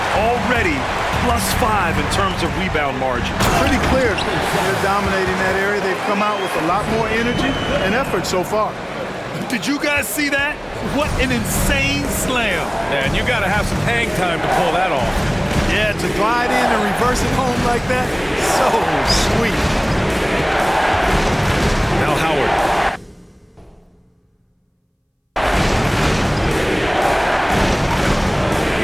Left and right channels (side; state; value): both; identical; correlation 1.00